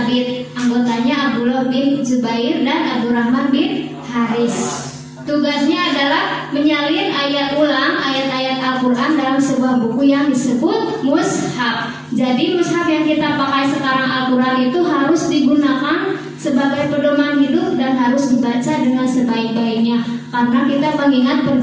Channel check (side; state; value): both; identical; correlation 1.00